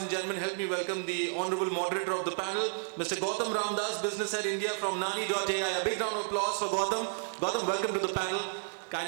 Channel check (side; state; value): left; silent; digital silence